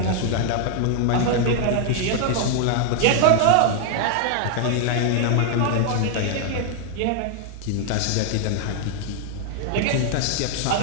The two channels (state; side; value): different; both; correlation 0.00